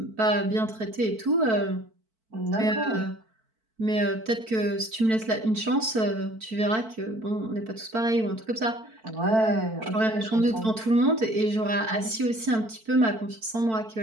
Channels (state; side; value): late; left; 4.5 ms